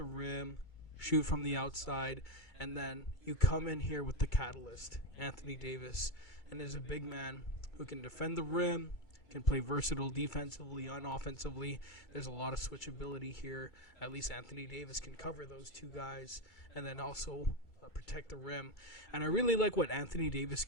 rim, shoot from the outside, and then you come in here with the catalyst, Anthony Davis, and is a big man who can defend the rim, can play versatile defensively, unoffensively. There's a lot of switchability here. At least Anthony Davis can cover those 2 guys and then also protect the rim. And I really like what Anthony Davis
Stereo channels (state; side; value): late; right; 2.3 ms